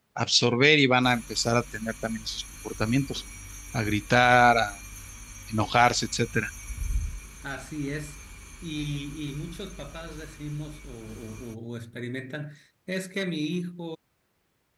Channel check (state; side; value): identical; both; correlation 1.00